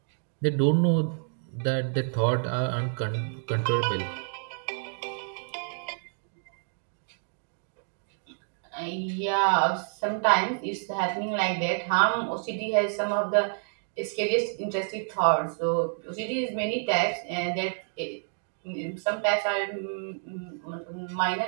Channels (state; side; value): silent; left; digital silence